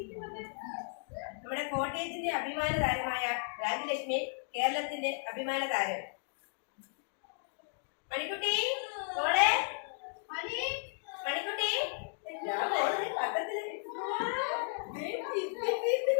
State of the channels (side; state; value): right; silent; digital silence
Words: നമ്മുടെ കോട്ടയത്തിന്റെ അഭിമാന താരമായ രാജലക്ഷ്മി കേരളത്തിന്റെ അഭിമാന താരം. മണിക്കുട്ടി മോളെ മണിക്കുട്ടി പത്രത്തില്